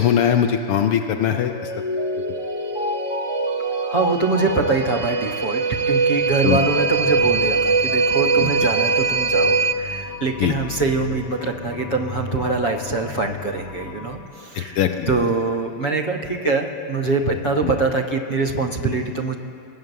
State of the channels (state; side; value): late; right; 6.9 ms